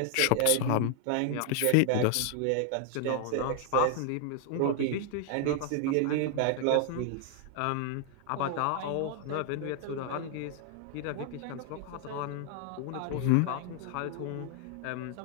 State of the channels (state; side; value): different; both; correlation 0.00